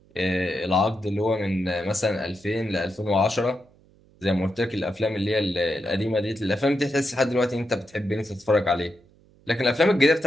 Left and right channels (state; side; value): noise; right; hum, 29 dB below the sound